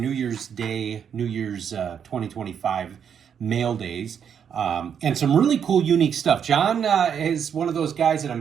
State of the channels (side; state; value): left; quieter; 7.9 dB